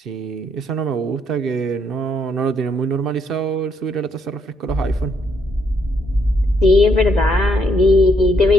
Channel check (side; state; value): both; normal; correlation 0.73